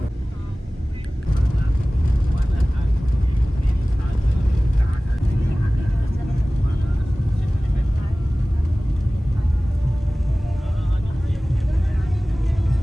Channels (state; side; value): normal; both; correlation 0.98